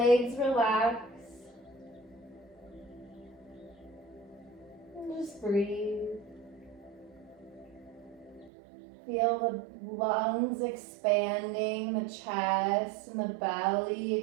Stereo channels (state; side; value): drops out; left; at 8.5 s